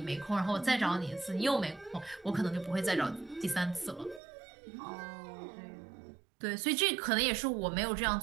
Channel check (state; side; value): drops out; left; at 4.2 s